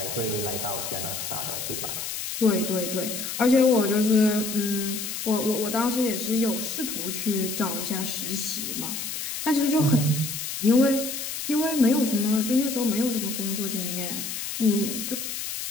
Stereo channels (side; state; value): left; noise; hiss, 5 dB below the sound